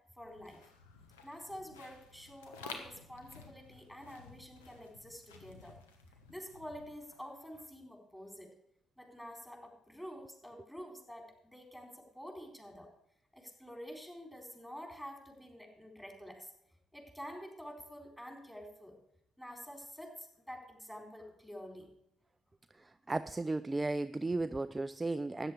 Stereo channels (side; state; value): both; normal; correlation 0.94